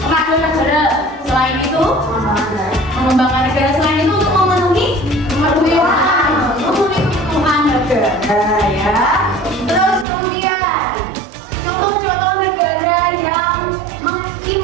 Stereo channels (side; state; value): left; drops out; at 10.1 s